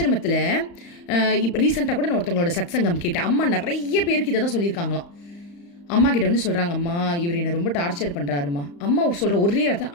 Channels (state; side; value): late; right; 35 ms